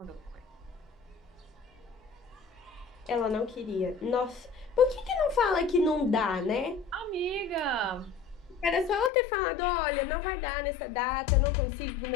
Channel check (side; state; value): right; drops out; at 9.1 s